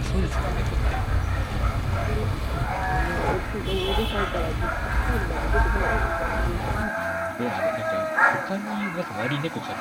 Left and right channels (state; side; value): identical; both; correlation 1.00